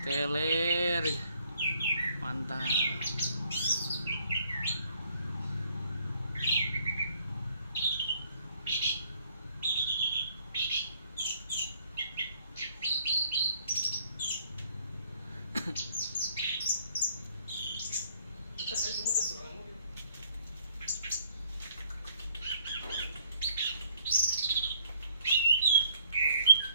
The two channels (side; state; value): both; inverted; correlation -0.63